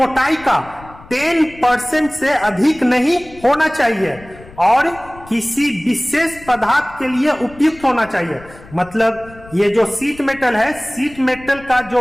का 10% से अधिक नहीं होना चाहिए और किसी विशेष पदार्थ के लिए उपयुक्त होना चाहिए। मतलब ये जो सीट मेटल है, सीट मेटल का जो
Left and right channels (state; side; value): noise; left; rumble, 21 dB below the sound